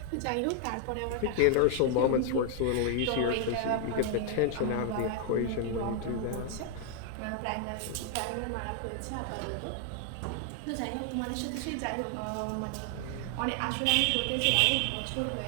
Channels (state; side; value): different; both; correlation 0.00